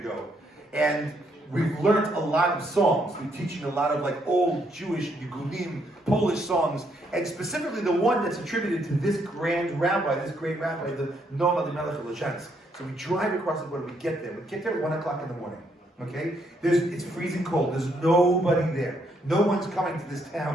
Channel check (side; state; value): both; normal; correlation 0.73